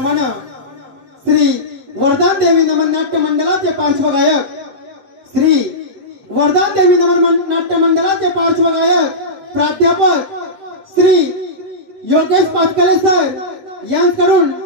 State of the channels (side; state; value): left; late; 7.6 ms